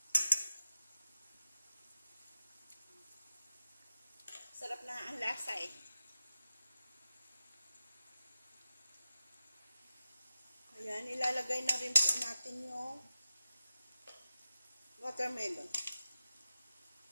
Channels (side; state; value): both; inverted; correlation -0.91